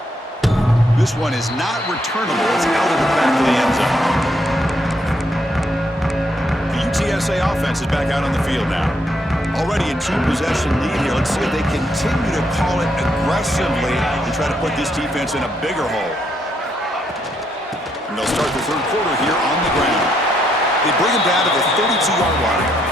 This one is not returnable. It's out of the back of the end zone. The UTSA offense is back out on the field now. Already a two-possession lead here. Let's see if they continue to call it aggressively and try to put this defense in a bigger hole. And they'll start the third quarter here on the ground. They bring him down to the 32-yard line.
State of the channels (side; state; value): both; normal; correlation 0.75